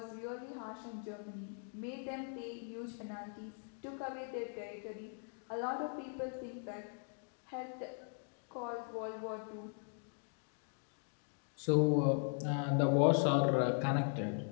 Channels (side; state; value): right; silent; 51 dB below the other